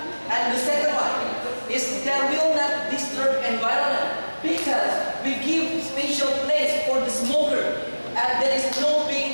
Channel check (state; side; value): inverted; both; correlation -1.00